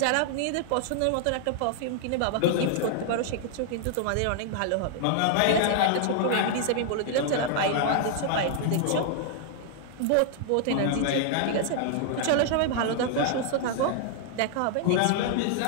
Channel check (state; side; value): different; both; correlation -0.01